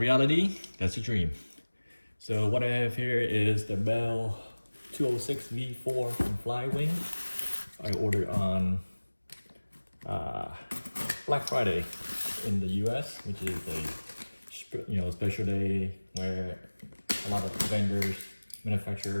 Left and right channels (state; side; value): inverted; both; correlation -1.00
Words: that's a dream. So what I have here is the Bell 206 V4 from Flywing. I ordered on Black Friday in the US, which is a special day where a lot of vendors,